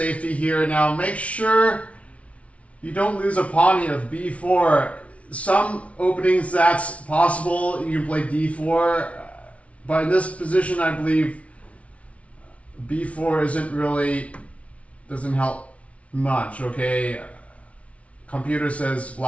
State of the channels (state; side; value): late; right; 0.064 ms